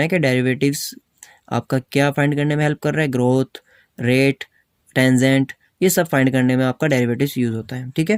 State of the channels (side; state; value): both; identical; correlation 1.00